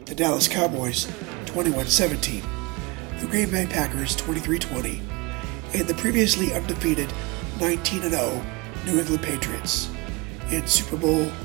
the Dallas Cowboys 21-17, the Green Bay Packers 23-20, and the previously undefeated 19-0 New England Patriots in Super Bowl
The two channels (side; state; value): left; quieter; 26.4 dB